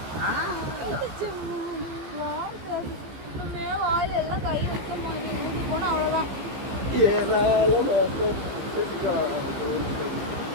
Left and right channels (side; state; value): left; late; 15 ms